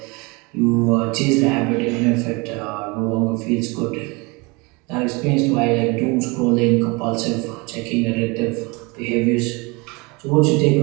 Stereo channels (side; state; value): left; quieter; 27.1 dB